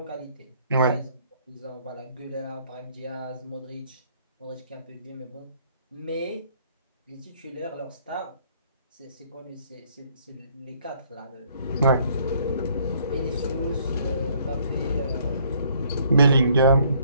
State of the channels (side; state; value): both; inverted; correlation -0.63